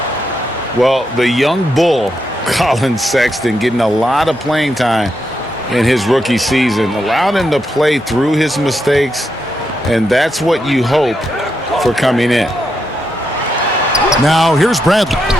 Well, the young bull, Colin Sexton, getting a lot of playing time in his rookie season, allowed him to play through his mistakes, and that's what you hope for coming in. Now here's Bradley.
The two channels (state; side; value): normal; both; correlation 0.83